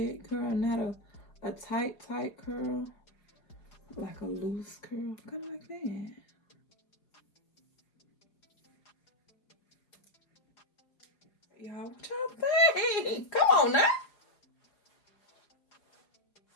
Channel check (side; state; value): right; late; 4.9 ms